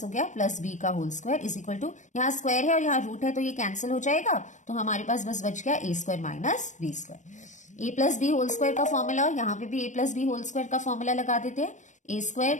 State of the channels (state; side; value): late; right; 0.35 ms